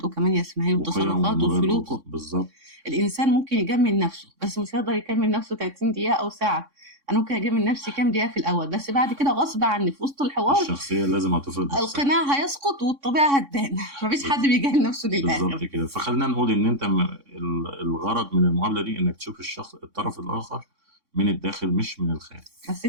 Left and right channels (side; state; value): left; late; 3.6 ms